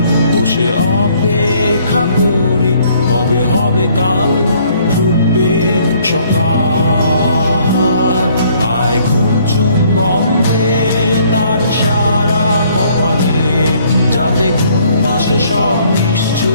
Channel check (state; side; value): inverted; both; correlation -0.62